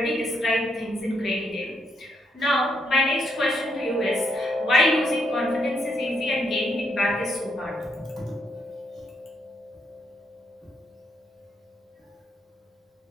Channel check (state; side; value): normal; both; correlation 0.77